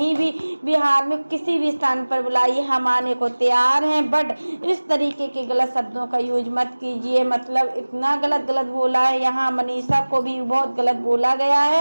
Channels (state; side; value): inverted; both; correlation -1.00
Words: भी बिहार में किसी भी स्थान पर बुलाइए, हम आने को तैयार हैं। बट इस तरीके के गलत शब्दों का यूज मत कीजिए। मतलब इतना गलत गलत बोला है, यहाँ मनीषा को भी बहुत गलत बोला गया